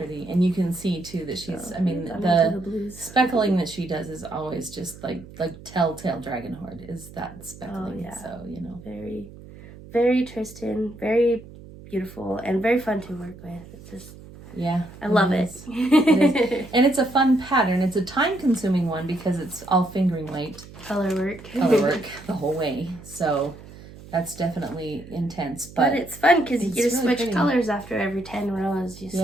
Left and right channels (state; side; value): noise; right; hum, 18 dB below the sound